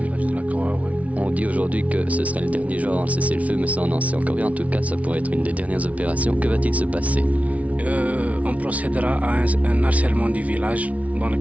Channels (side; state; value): left; late; 0.067 ms